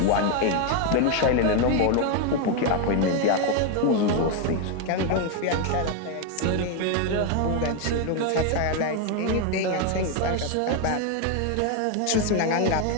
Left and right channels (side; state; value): both; different; correlation 0.01